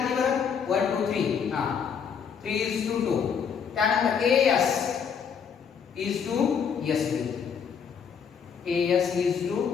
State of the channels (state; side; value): quieter; right; 7.0 dB